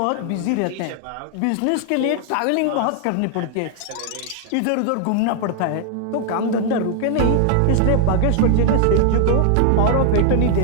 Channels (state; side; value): different; both; correlation 0.00